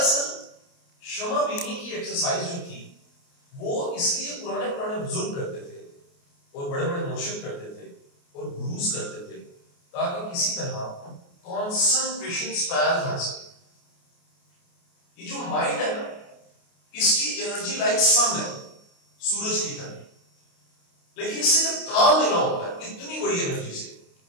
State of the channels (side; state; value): right; late; 29 ms